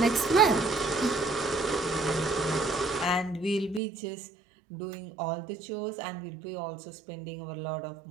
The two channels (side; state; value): left; drops out; at 3.8 s